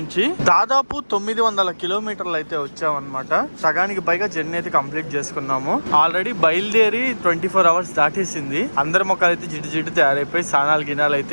దాదాపు 900 కిలోమీటర్లు అయితే వచ్చామన్నమాట. సగానికి పైగా జర్నీ అయితే కంప్లీట్ చేసుకున్నాము. ఆల్రెడీ బయలుదేరి 24 అవర్స్ దాటేసింది. అందరి మొక్కలు అయితే జిడ్డు తయారైపోయి స్నానాలు గినాలు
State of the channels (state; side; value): inverted; both; correlation -1.00